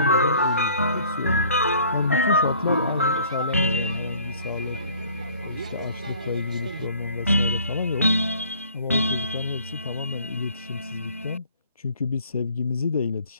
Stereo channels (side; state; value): both; inverted; correlation -0.55